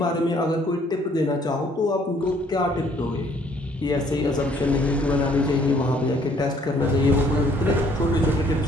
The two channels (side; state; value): both; normal; correlation 0.62